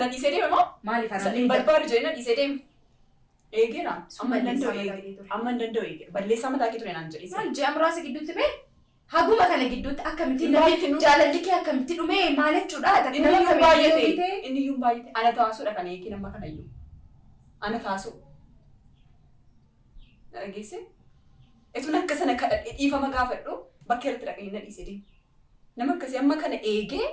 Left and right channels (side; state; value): both; identical; correlation 1.00